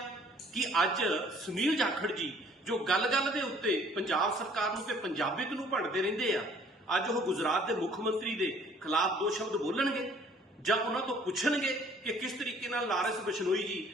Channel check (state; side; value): normal; both; correlation 0.56